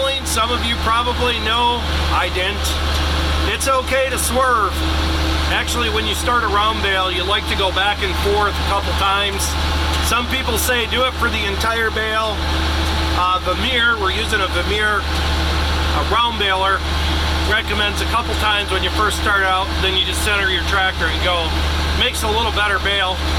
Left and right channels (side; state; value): both; identical; correlation 1.00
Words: some of you probably know, I didn't. It's okay to swerve. Actually, when you start a round bale, you like to go back and forth a couple times. Some people say do it for the entire bale. Vemeer, we're using a Vemeer round baler, recommends a couple times when you first start out, then you just center your tractor and go. Makes a little better bale.